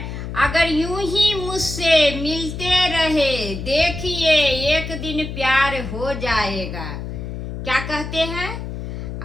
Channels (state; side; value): noise; left; hum, 7 dB below the sound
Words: अगर यूं ही मुझसे मिलते रहे देखिए एक दिन प्यार हो जाएगा। क्या कहते हैं?